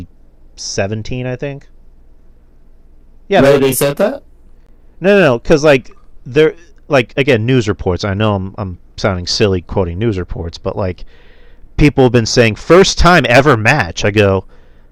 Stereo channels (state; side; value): identical; both; correlation 1.00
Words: I think. Yeah, Really, they said that? No, because like they're like again news reports. I know I'm sounding silly quoting news reports, but like people have been saying first time ever match. I go,